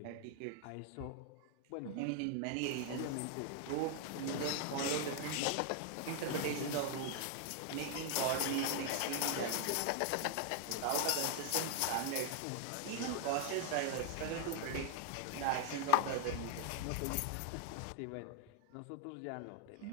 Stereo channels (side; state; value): both; different; correlation 0.00